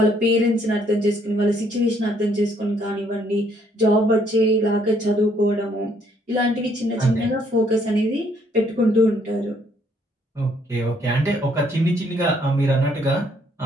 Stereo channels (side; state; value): both; normal; correlation 0.67